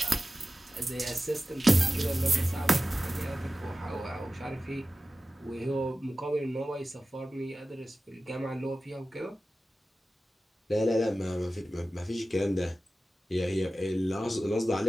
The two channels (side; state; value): both; normal; correlation 0.95